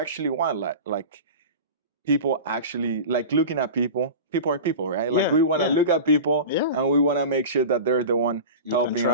want, like people actually, like looking at people. People are people, right? Like Yeah, we want to yeah. look at people Yeah. and we want to make sure that they're the one You can helping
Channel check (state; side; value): inverted; both; correlation -0.31